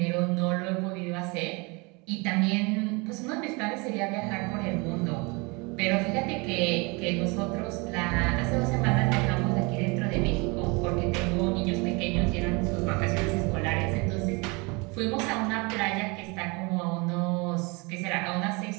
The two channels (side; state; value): left; quieter; 28.2 dB